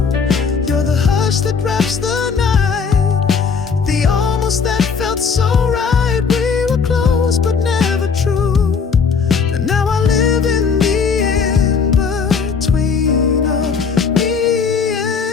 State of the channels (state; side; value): quieter; right; 5.7 dB